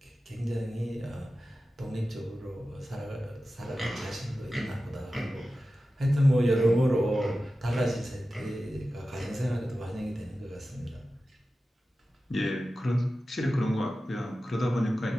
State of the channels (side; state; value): both; normal; correlation 0.94